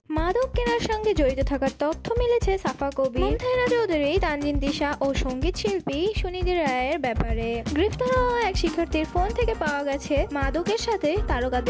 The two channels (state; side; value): identical; both; correlation 1.00